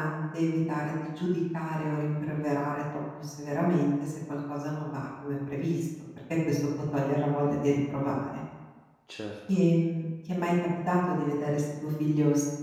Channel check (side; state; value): both; identical; correlation 1.00